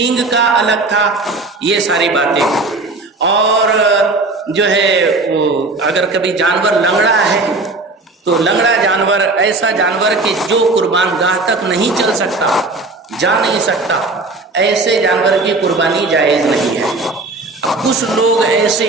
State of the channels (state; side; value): quieter; left; 3.3 dB